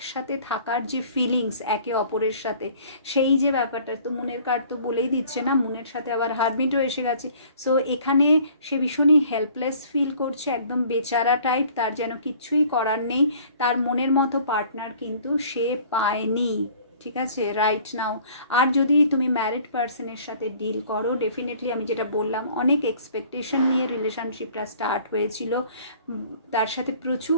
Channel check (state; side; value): inverted; both; correlation -0.52